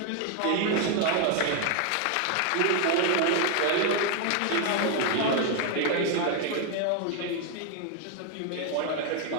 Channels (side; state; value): both; different; correlation 0.01